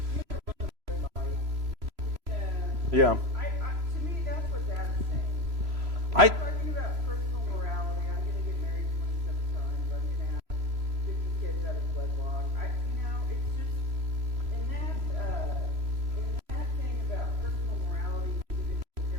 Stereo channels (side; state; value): left; late; 3.0 ms